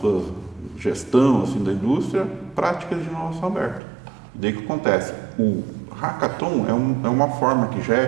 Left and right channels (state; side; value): drops out; left; at 3.8 s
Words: gestão assim, da indústria práticas de inovação aberta. E daí o que acontece? O Hackathon é uma forma que já